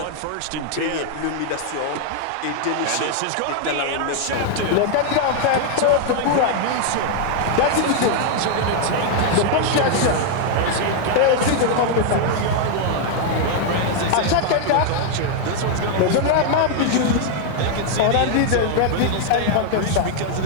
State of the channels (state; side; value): different; both; correlation 0.00